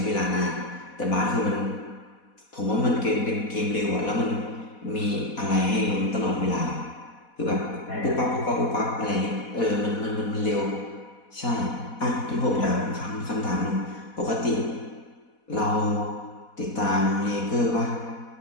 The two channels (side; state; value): right; late; 4.1 ms